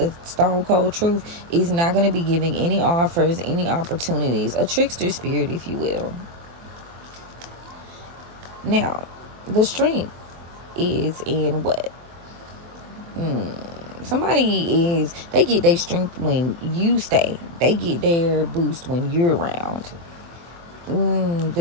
stone cold truth, is not going to be giving any offers, any opportunities, a trickster spirit, if you will. Now, the strength is in what? They get their strength when you stay. They get their boost when you're around.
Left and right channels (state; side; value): late; left; 24 ms